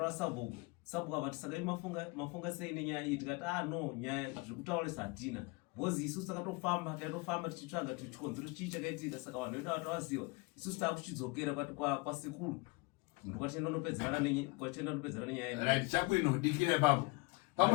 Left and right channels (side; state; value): right; quieter; 26.2 dB